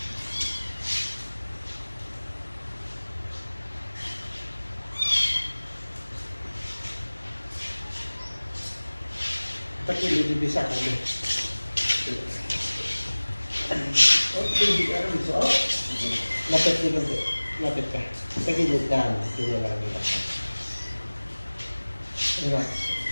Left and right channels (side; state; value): both; inverted; correlation -1.00